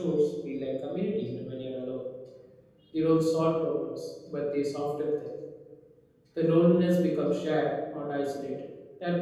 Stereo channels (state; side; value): identical; both; correlation 1.00